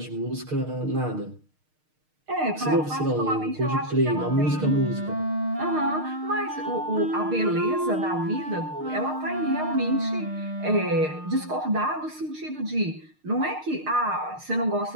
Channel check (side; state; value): left; late; 6.5 ms